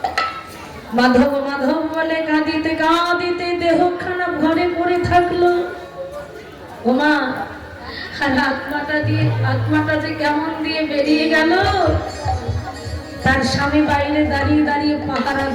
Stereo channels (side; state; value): both; identical; correlation 1.00